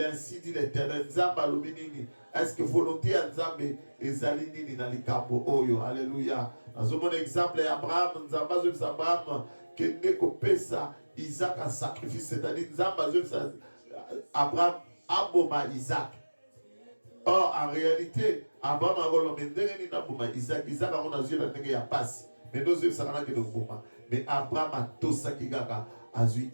dit l'Éternel, Nzamba luminini. Est-ce que volonté à Nzambe ezali nini na likambo oyo? Alléluia. Dans un bon exemple, Abraham, Nzamba zwe Abraham, kende ko pesa Isaac en sacrifice, c'est-à-dire Nzamba zwe Abraham aboma Isaac. Or, en réalité, Abraham a volonté ndenge na boma Isaac. Isaac a on a zwe na ndenge ya pasi. Mais nous zwe sakana ke boma. Mais Abraham a tosa kigaka azui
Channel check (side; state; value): both; inverted; correlation -1.00